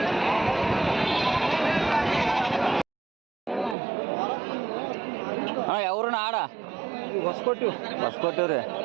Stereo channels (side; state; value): left; drops out; at 3.8 s